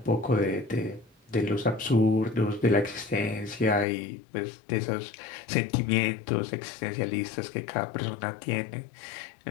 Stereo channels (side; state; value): right; drops out; at 3.9 s